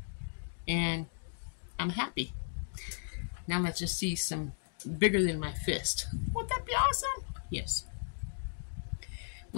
and I'm happy. Now let's just see some bigger than my fist. Wouldn't that be awesome? Yes.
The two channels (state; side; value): silent; right; digital silence